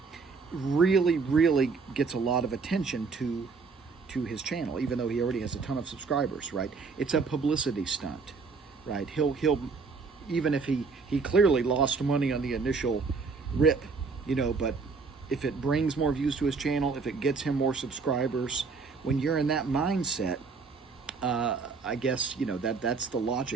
really gets a lot of attention to his channel, even though he already has a ton of subscribers, right? It's a publicity stunt, right? He'll even if he clearly lost money on the initial rip, but if it brings more views to his channel, if it gets him more subscribers, when you're in that mindset, I guess, that's the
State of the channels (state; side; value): quieter; left; 4.7 dB